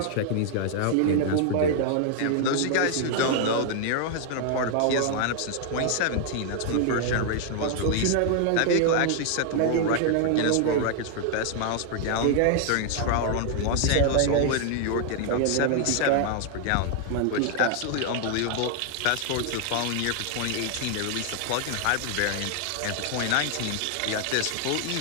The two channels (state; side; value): different; both; correlation 0.00